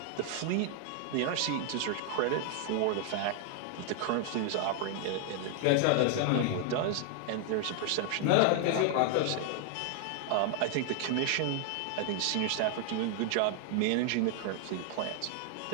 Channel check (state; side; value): different; both; correlation 0.00